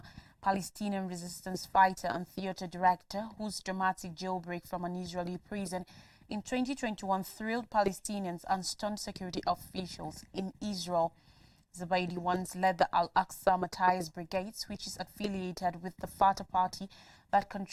Palestinian resistance fighter and theater director whose dramatic jailbreak from an Israeli prison in 2021 thrilled Palestinians and stunned security officials in Israel. Zubaidi once led the Al-Aqsa Matthias Brigades, which is affiliated with the Fatah party that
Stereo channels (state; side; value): identical; both; correlation 1.00